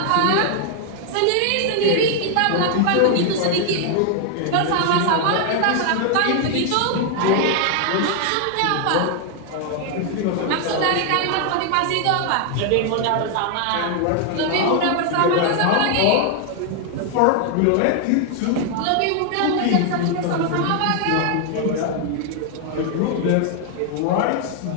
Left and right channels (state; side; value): different; both; correlation 0.00